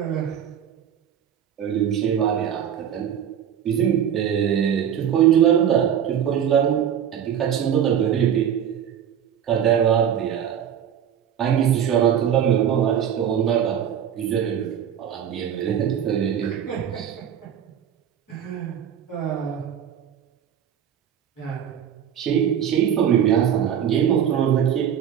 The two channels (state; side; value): quieter; left; 9.1 dB